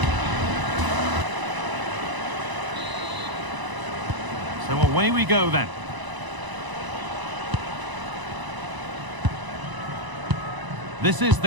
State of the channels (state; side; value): late; left; 1.0 ms